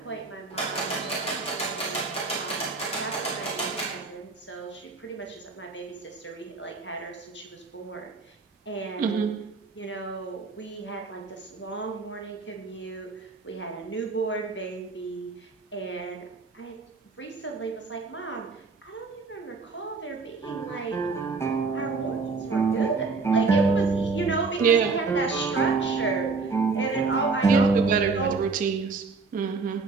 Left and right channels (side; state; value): left; quieter; 4.3 dB